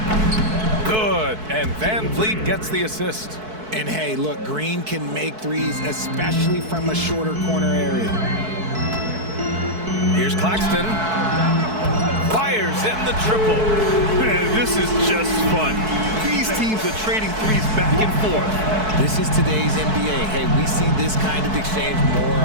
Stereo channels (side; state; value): left; late; 4.6 ms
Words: Good, and Van Vliet gets the assist. And hey, look, Green can make threes, especially from a shorter corner area. Here's Claxton. Fires in the triple. Man, this is just fun. These teams are trading threes back and forth. This is today's NBA. Hey, we see this kind of exchange more